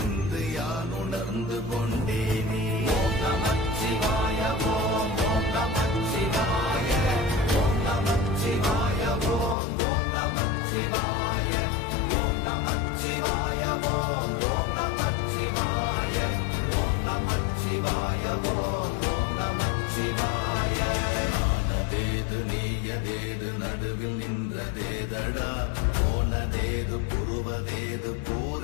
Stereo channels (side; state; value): right; drops out; at 9.6 s